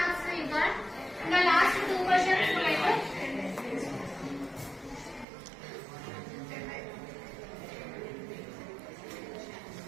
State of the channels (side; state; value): left; drops out; at 5.2 s